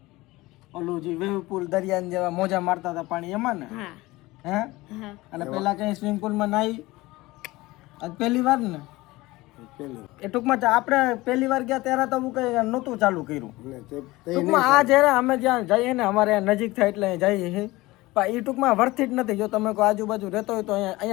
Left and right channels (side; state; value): right; quieter; 20.0 dB